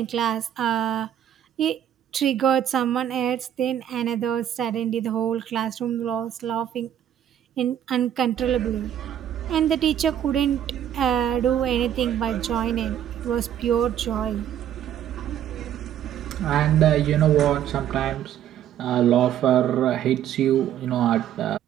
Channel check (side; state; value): left; quieter; 10.5 dB